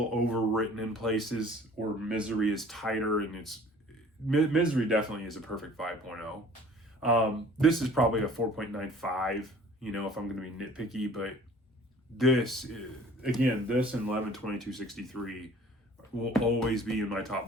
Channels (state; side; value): normal; both; correlation 0.50